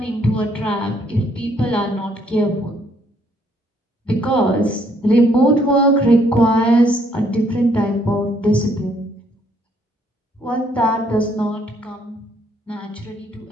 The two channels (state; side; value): normal; both; correlation 0.67